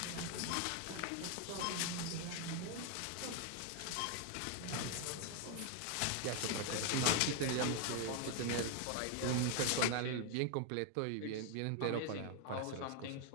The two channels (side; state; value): both; different; correlation 0.01